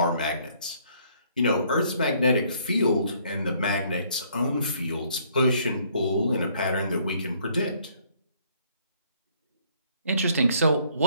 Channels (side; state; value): both; inverted; correlation -0.64